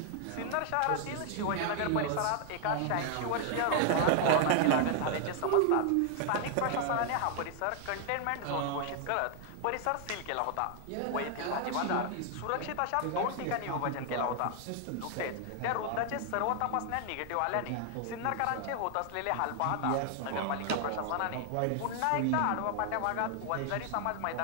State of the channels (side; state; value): both; different; correlation 0.00